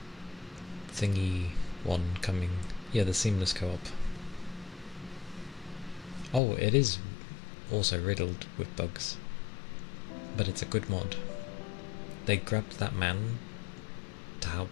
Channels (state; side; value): drops out; right; at 6.4 s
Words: thingy one coming? Yeah, the seamless co-op. Oh, it is also riddled with bugs, but it's a good mod. They grabbed that man to